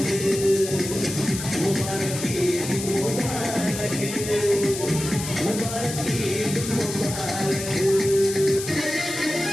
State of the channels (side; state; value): left; noise; hiss, 7 dB below the sound